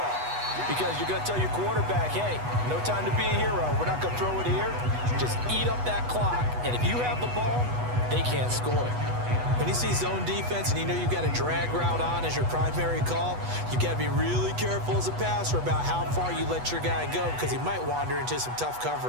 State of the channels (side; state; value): left; late; 8.2 ms